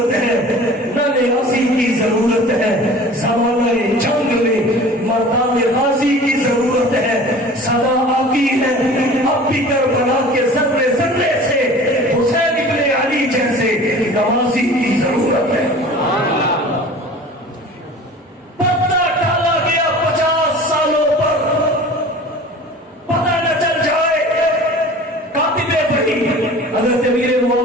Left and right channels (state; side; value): normal; both; correlation 0.42